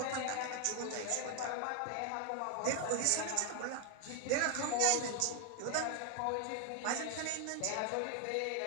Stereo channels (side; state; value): both; different; correlation 0.01